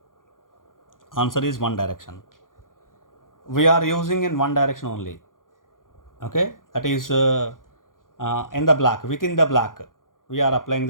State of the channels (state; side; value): late; right; 0.90 ms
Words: Answer is one direction. We are using in one direction only. Okay, that is in the block, within the block, we are applying